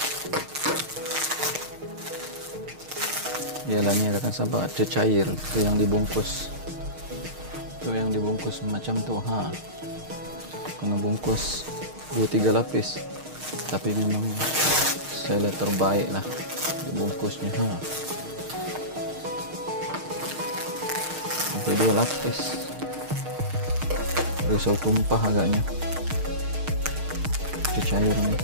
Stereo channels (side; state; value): left; late; 6.5 ms